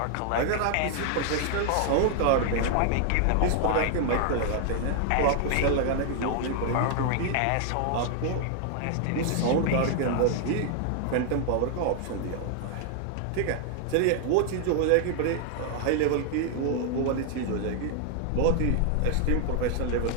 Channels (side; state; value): both; different; correlation 0.00